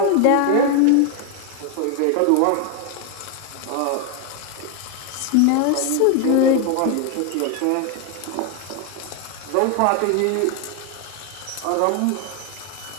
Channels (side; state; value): both; different; correlation 0.01